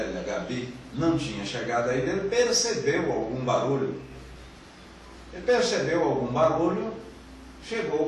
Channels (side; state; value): both; identical; correlation 1.00